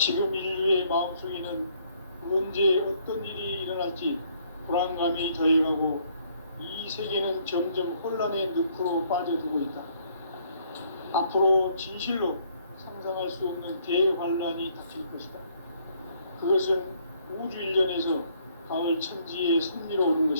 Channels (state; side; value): inverted; both; correlation -0.66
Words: 인류의 마음속에는 언제 어떤 일이 일어날지 불안감이 더해가고 이 세계는 점점 혼란의 늪으로 빠져들고 있다. 앞으로 진실로 상상할 수 없는 대환란이 닥칠 것이다. 그것은 우주 일전에서 가을 천지의 섭리로 오는